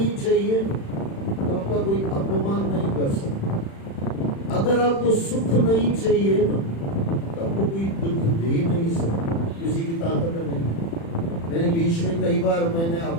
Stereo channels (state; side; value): late; right; 36 ms